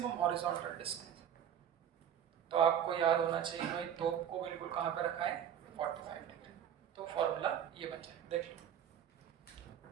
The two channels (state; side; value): quieter; left; 9.4 dB